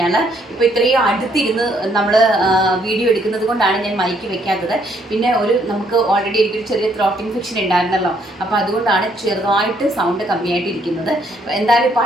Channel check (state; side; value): normal; both; correlation 0.69